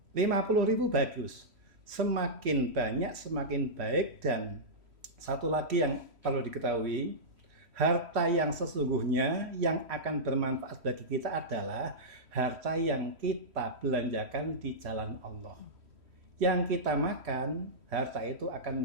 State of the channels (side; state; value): left; late; 3.1 ms